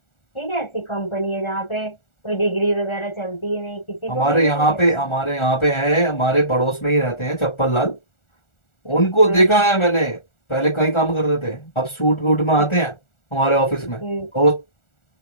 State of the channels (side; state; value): right; late; 1.4 ms